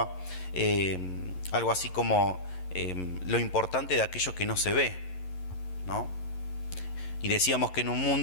algo así como lo importante de aquello que no se ve, ¿no? Y decíamos que en un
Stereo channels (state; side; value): late; right; 11 ms